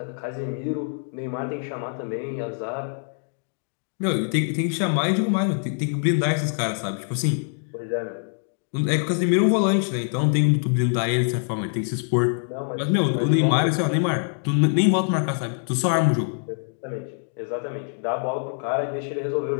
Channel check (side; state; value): right; silent; 59 dB below the other